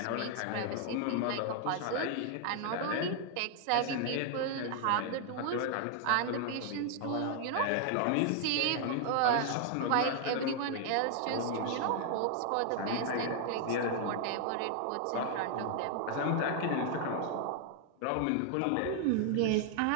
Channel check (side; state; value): both; different; correlation 0.00